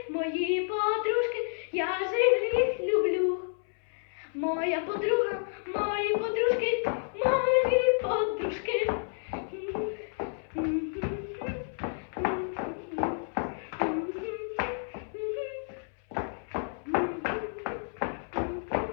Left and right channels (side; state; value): right; silent; 58 dB below the other